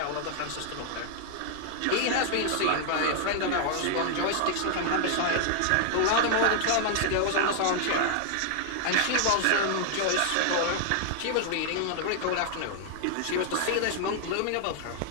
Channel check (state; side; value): different; both; correlation 0.00